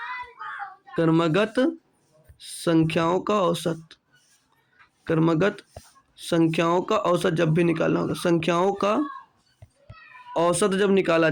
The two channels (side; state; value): both; identical; correlation 1.00